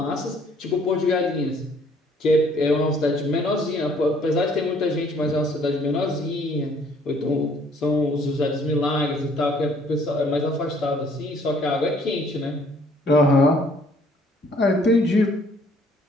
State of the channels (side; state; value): both; normal; correlation 0.61